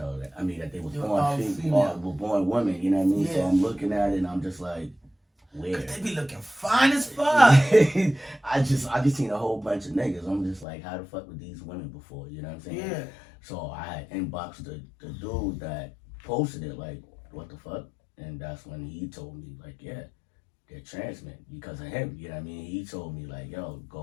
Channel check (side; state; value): right; drops out; at 10.7 s